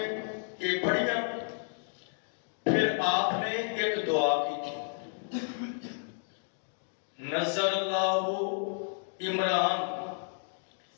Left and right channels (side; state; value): right; silent; digital silence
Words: یہ پڑھیا، پھر آپ نے ایک دعا کی تھی، نظر اللہ عمران